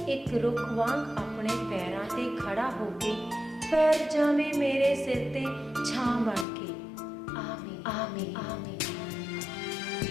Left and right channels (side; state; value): right; drops out; at 6.5 s